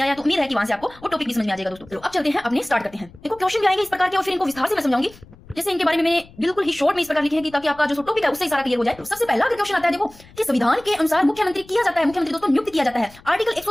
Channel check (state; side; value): noise; left; rumble, 23 dB below the sound